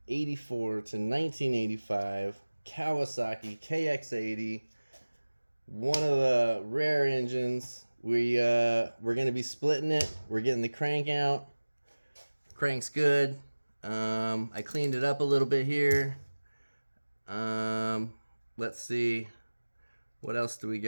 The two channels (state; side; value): inverted; both; correlation -1.00